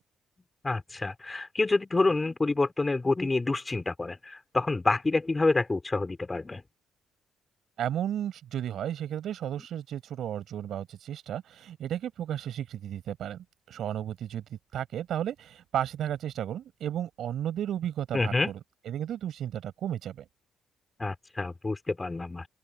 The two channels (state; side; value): normal; both; correlation 0.84